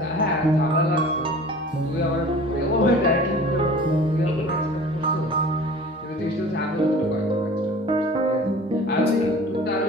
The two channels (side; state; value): both; normal; correlation 0.43